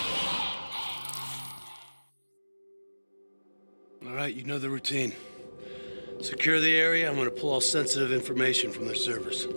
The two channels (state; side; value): inverted; both; correlation -1.00